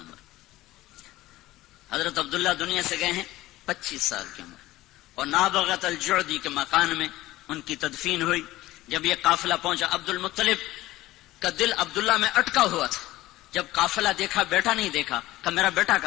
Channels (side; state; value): right; quieter; 16.9 dB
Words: حضرت عبداللہ دنیا سے گئے ہیں 25 سال کی عمر، اور نابغت الجعدی کے مکان میں ان کی تدفین ہوئی۔ جب یہ قافلہ پہنچا، عبد المطلب کا دل عبداللہ میں اٹکا ہوا تھا، جب قافلہ دیکھا بیٹا نہیں دیکھا، کہا میرا بیٹا